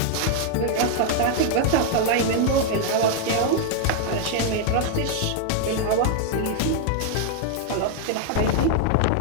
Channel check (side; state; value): both; different; correlation 0.00